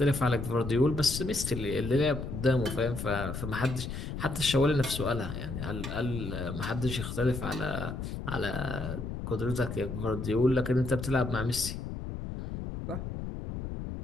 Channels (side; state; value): left; noise; rumble, 6 dB below the sound